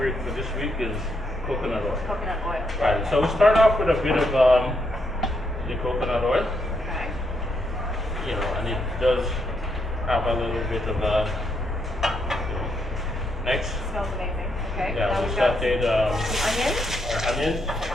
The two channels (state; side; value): normal; both; correlation 0.78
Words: for this week is coconut oil. Coconut oil. Right. So we start off with a bit of the coconut oil. Okay. You know, and it does have a little bit of next. Smells amazing. Okay. Yeah, Now we we've got sauteed some onions. our onions.